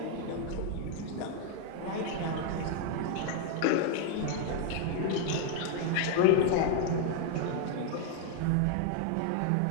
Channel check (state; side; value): different; both; correlation 0.00